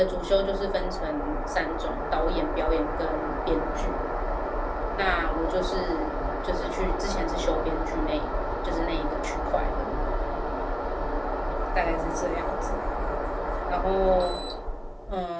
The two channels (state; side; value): identical; both; correlation 1.00